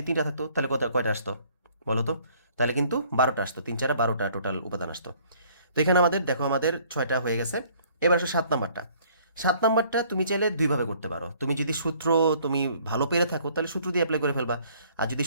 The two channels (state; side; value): inverted; both; correlation -0.59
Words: 3টা থাকতো, তাহলে কয়টা আসতো বলো তো? তাহলে কিন্তু 12টা আসতো, 3, 4, 12টা টোটাল উপাদান আসতো। তো এখানে আমাদের দেখো আমাদের 6টা হয়ে গেছে। এবার আসো 7 নাম্বারটা। 7 নাম্বারটা তুমি চাইলে দুইভাবে করতে পারো। তুমি যদি সূত্র তুমি ভালো পেরে থাকো, তাহলে সূত্র দিয়ে অ্যাপ্লাই করে ফেলবা। আর যদি